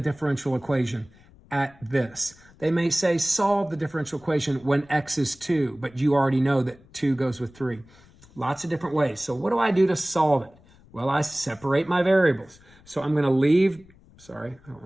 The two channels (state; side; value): noise; left; rumble, 26 dB below the sound